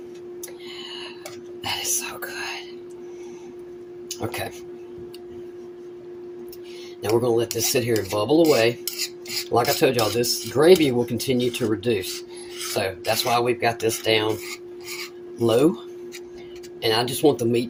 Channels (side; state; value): both; identical; correlation 1.00